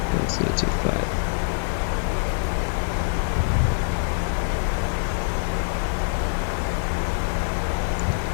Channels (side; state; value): right; silent; digital silence